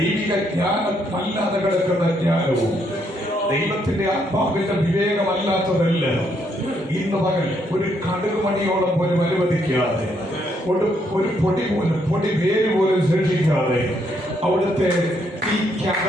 ജ്ഞാനം അല്ലാതെ കിടക്കുന്ന ജ്ഞാനവും ദൈവത്തിന്റെ ആത്മാവിന്റെ വിവേകമല്ലാത്തതെല്ലാം ഇന്ന് പകൽ ഒരു കടുകുമണിയോളം പോലും അനുവദിക്കാതെ, ഒരു പൊടി വേര് പോലും ശേഷിക്കാതെ അവിടുത്തെ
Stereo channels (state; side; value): normal; both; correlation 0.73